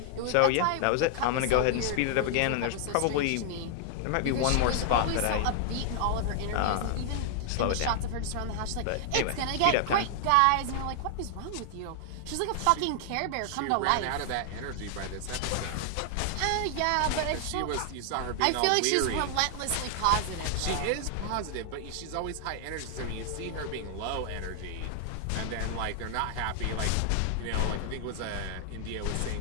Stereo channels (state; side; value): different; both; correlation 0.00